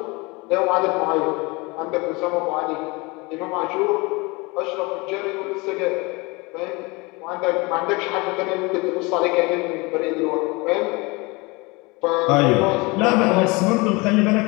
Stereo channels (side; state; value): right; quieter; 25.7 dB